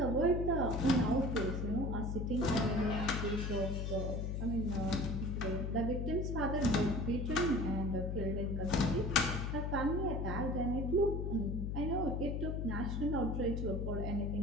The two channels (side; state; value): left; noise; hum, 1 dB below the sound